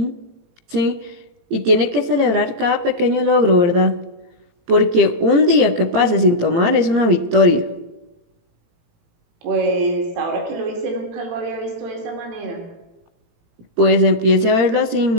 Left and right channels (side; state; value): left; late; 18 ms